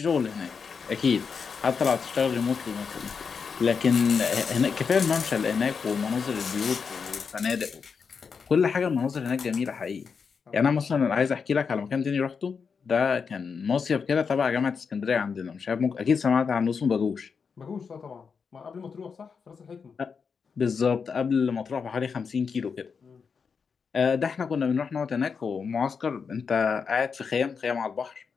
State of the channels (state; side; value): quieter; right; 5.8 dB